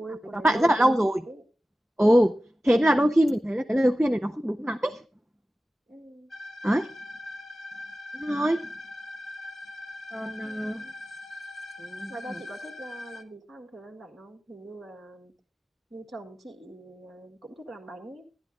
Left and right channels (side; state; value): both; normal; correlation 0.95